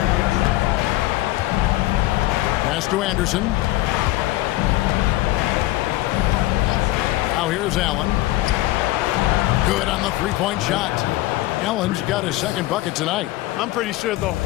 Pass to Anderson. Now here's Allen. Good on the 3-point shot. Allen's got his 2nd bucket tonight. I'm pretty sure the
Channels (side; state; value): right; quieter; 17.5 dB